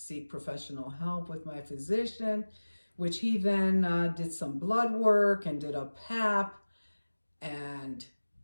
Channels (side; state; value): both; inverted; correlation -1.00